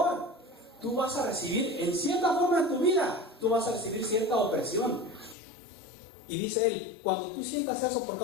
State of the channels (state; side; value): drops out; right; at 5.4 s